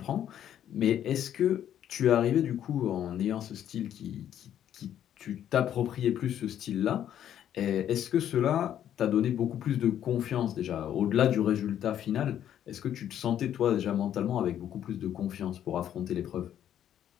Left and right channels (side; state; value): right; quieter; 10.5 dB